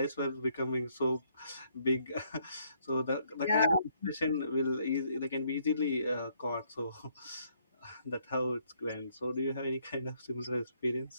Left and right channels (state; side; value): inverted; both; correlation -0.69